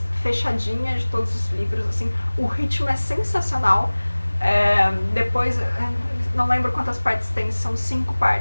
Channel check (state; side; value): inverted; both; correlation -1.00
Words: fechadinha de todos os livros, assim. O ritmo é sensacional. Depois, não lembro quantas partes tem, são 5